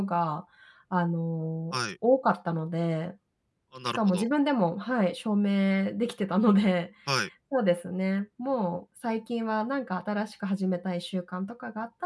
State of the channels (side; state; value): both; identical; correlation 1.00